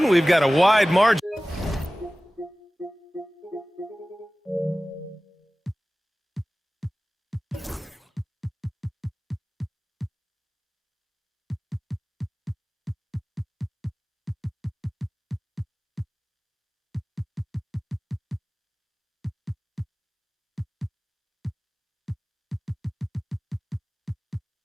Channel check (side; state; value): both; normal; correlation 0.98